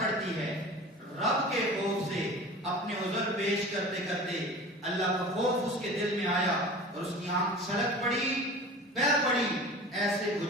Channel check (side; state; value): both; normal; correlation 0.38